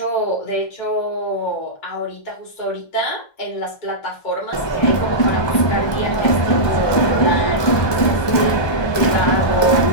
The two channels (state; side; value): late; right; 1.2 ms